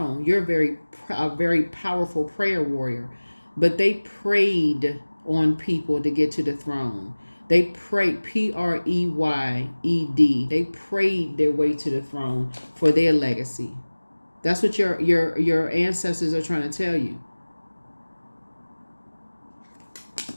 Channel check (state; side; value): inverted; both; correlation -1.00